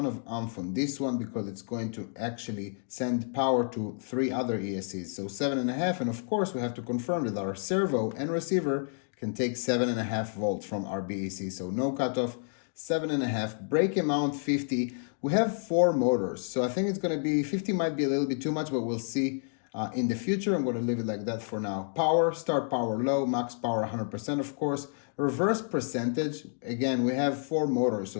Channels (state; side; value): silent; right; digital silence